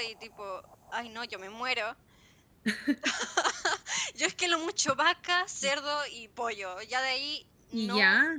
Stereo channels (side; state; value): both; identical; correlation 1.00